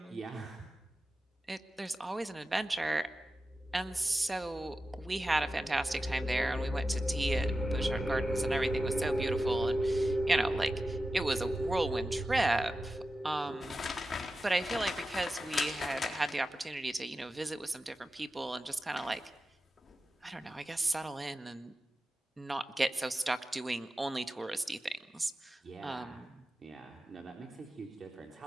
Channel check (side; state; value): both; normal; correlation 0.93